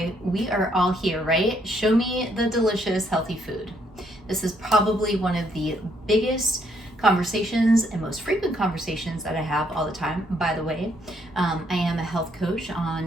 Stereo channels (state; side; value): normal; both; correlation 0.71